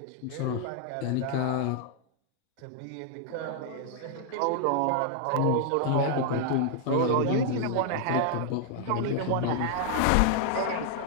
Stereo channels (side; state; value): both; different; correlation 0.00